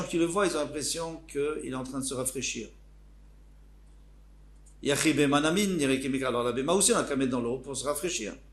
qui le voient, ils ont l'impression qu'il est en train de se rafraîchir. Yachi Bema Nami nire kemikar. Alors la BMA aussi on a qu'à mettre dans l'eau pour se rafraîchir.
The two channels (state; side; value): identical; both; correlation 1.00